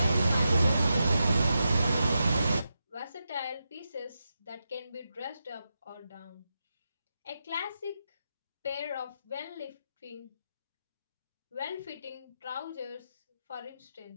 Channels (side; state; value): both; inverted; correlation -0.88